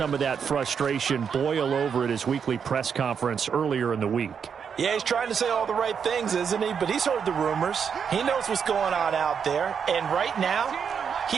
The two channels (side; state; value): left; quieter; 6.9 dB